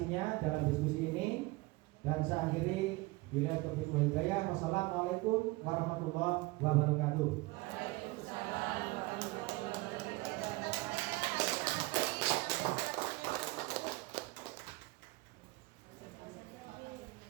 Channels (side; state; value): left; quieter; 22.5 dB